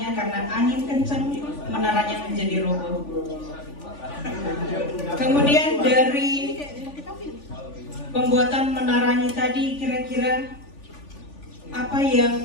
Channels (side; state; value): right; late; 3.4 ms